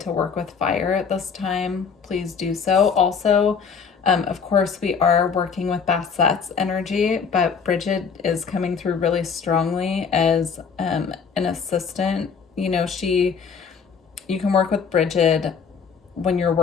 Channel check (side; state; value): right; quieter; 6.1 dB